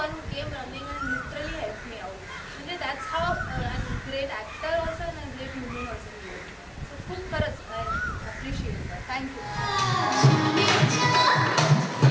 who came running and literally help me out. म्हणजे that's how great actor also and great human also. So खूप खरंच आय अप्रिशिएट दॅट. थँक्यू.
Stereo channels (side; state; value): both; identical; correlation 1.00